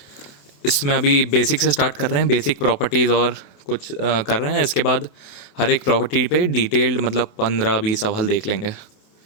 इसमें अभी बेसिक से स्टार्ट कर रहे हैं, बेसिक प्रॉपर्टीज़ और कुछ कर रहे हैं। इसके बाद हर एक प्रॉपर्टी पे डिटेल्ड मतलब 15-20 सवाल देख लेंगे,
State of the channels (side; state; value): right; late; 28 ms